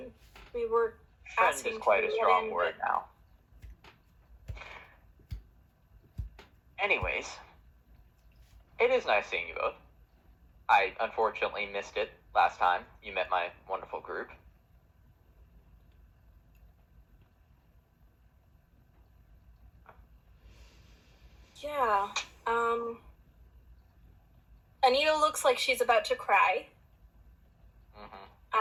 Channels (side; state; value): both; identical; correlation 1.00